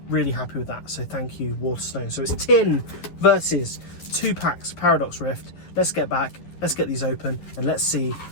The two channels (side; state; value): right; late; 11 ms